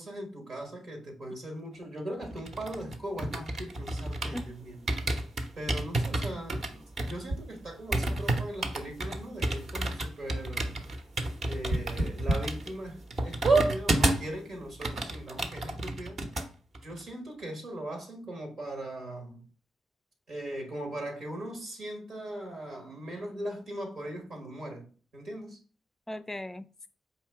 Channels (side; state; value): both; normal; correlation 0.87